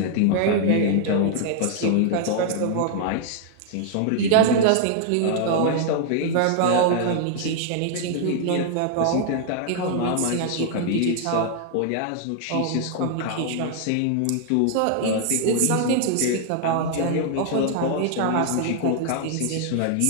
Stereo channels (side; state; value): both; different; correlation 0.00